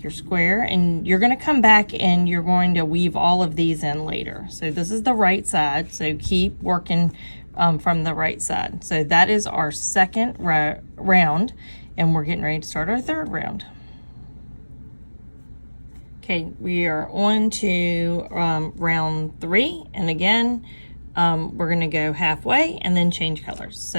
your square. And you're going to come back and you're going to weave all of these in later. So this is the right side, so keep working from the right side. So that is our second round, and we're getting ready to start our third round. Okay, we are on to round 3, and again, we're going to go halfway and then change colors. So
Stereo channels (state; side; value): inverted; both; correlation -1.00